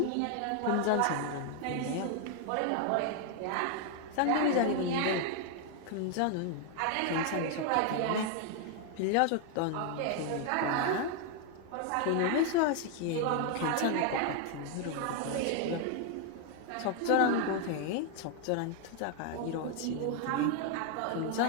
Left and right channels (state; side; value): different; both; correlation 0.00